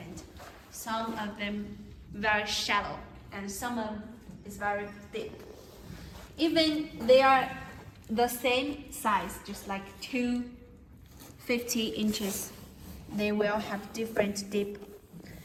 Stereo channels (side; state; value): both; identical; correlation 1.00